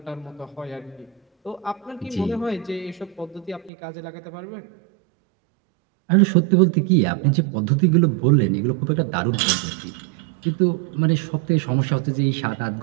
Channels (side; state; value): left; drops out; at 3.7 s